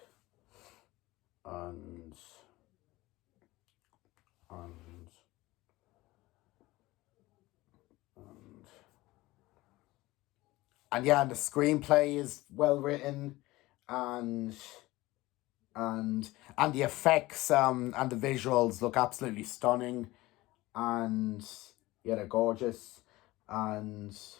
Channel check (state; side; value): quieter; right; 19.2 dB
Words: and and and and yeah, and the screenplay is well written, and and and the effects and the visuals look absolutely stunning, and yeah, they're gorgeous, and